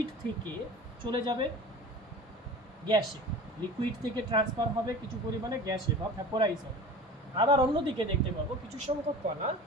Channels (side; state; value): both; normal; correlation 0.38